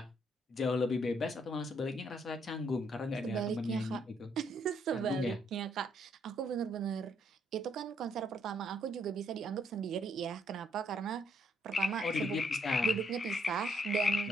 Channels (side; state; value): both; normal; correlation 0.71